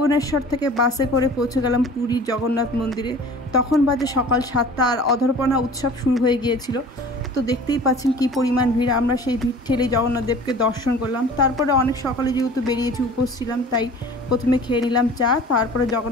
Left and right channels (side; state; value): both; normal; correlation 0.44